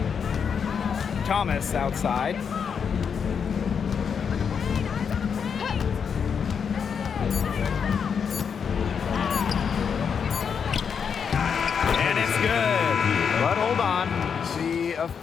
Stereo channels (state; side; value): quieter; right; 6.8 dB